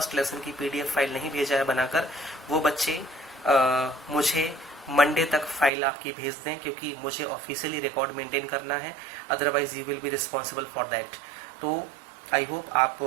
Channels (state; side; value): drops out; left; at 5.7 s